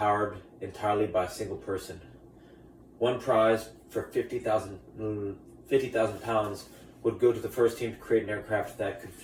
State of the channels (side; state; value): both; identical; correlation 1.00